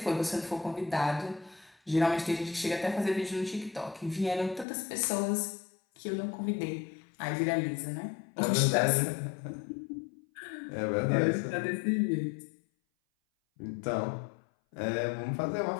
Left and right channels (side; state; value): right; drops out; at 4.7 s